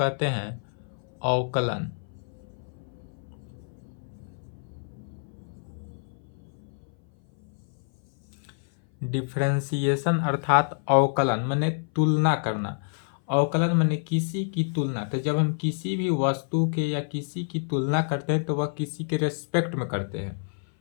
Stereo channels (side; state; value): right; silent; 57 dB below the other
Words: हैं अवकलन। डिफरेंशिएशन अर्थात अवकलन माने तुलना करना। अवकलन माने किसी की तुलना। तो जब हम किसी भी वस्तु के या किसी की तुलना करते हैं तो वह किसी के रेस्पेक्ट में करते हैं।